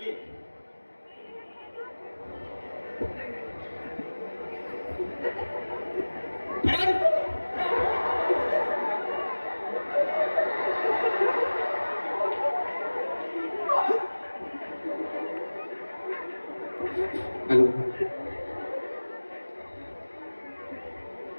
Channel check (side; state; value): both; inverted; correlation -1.00